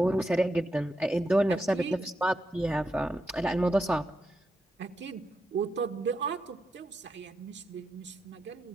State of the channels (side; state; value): both; normal; correlation 0.85